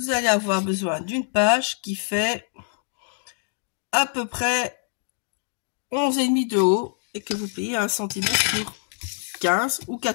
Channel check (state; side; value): silent; right; digital silence